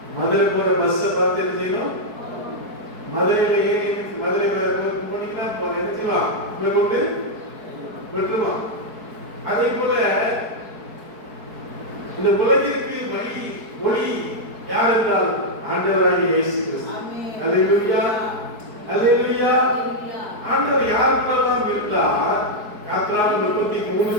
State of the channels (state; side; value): late; left; 4.6 ms